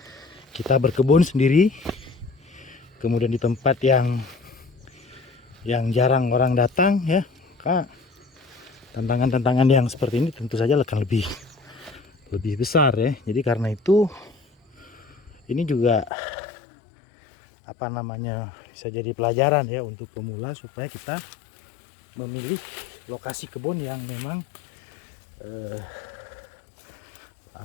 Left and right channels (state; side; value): drops out; right; at 16.1 s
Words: kita berkebun sendiri, kemudian di tempat yang jarang orang datang ya, maka tantangan-tantangan yang seperti ini tentu saja akan lebih besar ya. Jadi karena itu ini juga bisa jadi pelajaran ya untuk pemula, supaya kita memilih lokasi kebun yang memang